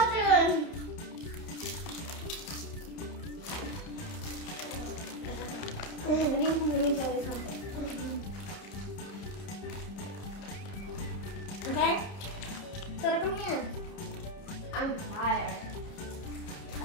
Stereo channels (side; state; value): right; late; 30 ms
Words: Let me tell you something. Okay? So come here. I'm tired. I